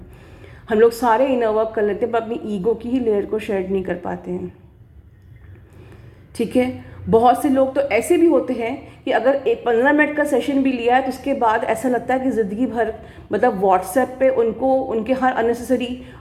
हम लोग सारे इनर वर्क कर लेते हैं पर अपनी ईगो की ही लेयर को शेड नहीं कर पाते हैं, ठीक है। बहुत से लोग तो ऐसे भी होते हैं कि अगर एक 15 मिनट का सेशन भी लिया है तो उसके बाद ऐसा लगता है कि ज़िंदगी भर मतलब व्हाट्सएप पे उनको उनके हर अननेसेसरी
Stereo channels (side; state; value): both; identical; correlation 1.00